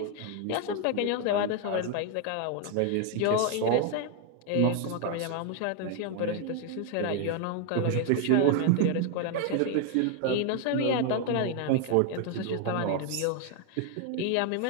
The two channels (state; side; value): different; both; correlation 0.01